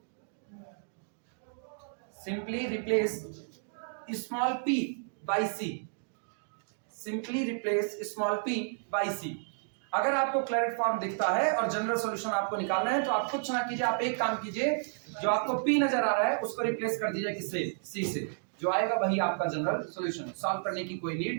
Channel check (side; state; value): left; silent; digital silence